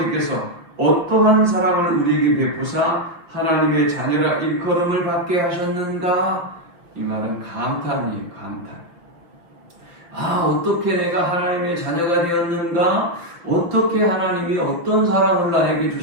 어떠한 사랑을 우리에게 베푸사 하나님의 자녀라 일컬음을 받게 하셨는가? 이 말은 감탄이에요. 감탄. 어떻게 내가 하나님의 자녀가 되었는가? 어떻게 하나님이 어떤 사랑을 나에게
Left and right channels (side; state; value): left; late; 5.6 ms